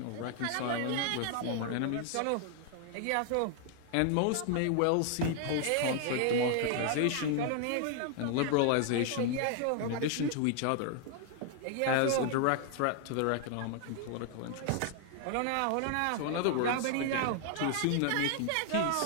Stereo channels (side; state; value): both; different; correlation 0.00